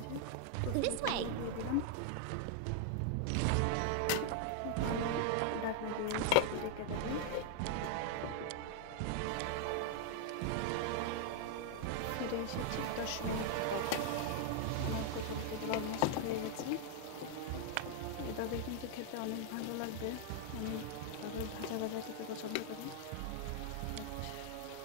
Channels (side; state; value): both; different; correlation 0.00